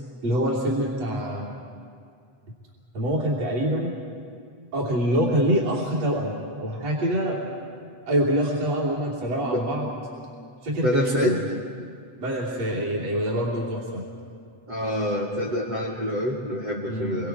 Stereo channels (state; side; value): late; left; 8.0 ms